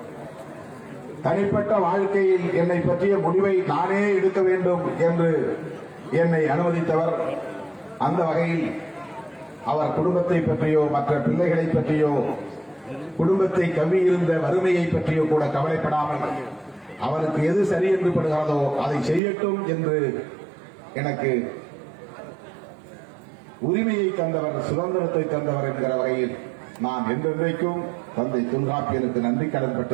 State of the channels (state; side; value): drops out; left; at 19.2 s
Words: தனிப்பட்ட வாழ்க்கையில் என்னை பற்றிய முடிவை நானே எடுக்க வேண்டும் என்று என்னை அனுமதித்தவர். அந்த வகையில் அவர் குடும்பத்தை பற்றியோ மற்ற பிள்ளைகளை பற்றியோ குடும்பத்தை கவ்வியிருந்த வறுமையை பற்றியோ கூட கவலைப்படாமல் அவருக்கு எது சரி என்று படுகிறதோ அதை செய்யட்டும் என்று எனக்கு உரிமையை தந்தவர், சுதந்திரத்தை தந்தவர் என்கிற வகையில் நான் என்றென்றைக்கும் தந்தை தொல்காப்பியனுக்கு நன்றி கடன்